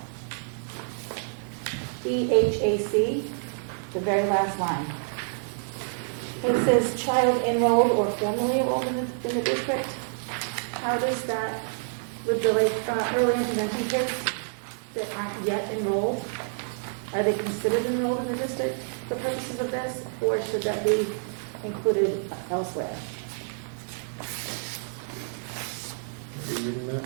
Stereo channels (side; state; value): left; silent; digital silence